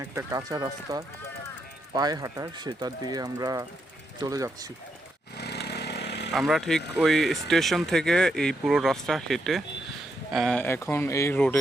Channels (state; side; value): normal; both; correlation 0.81